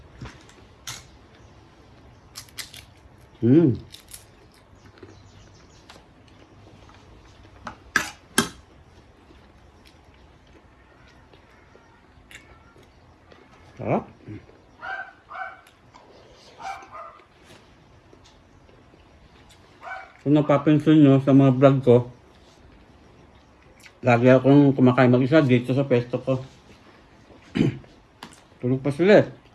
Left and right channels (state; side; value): identical; both; correlation 1.00